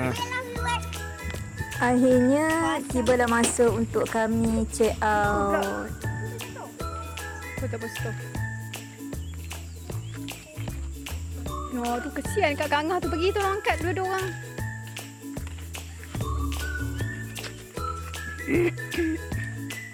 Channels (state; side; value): identical; both; correlation 1.00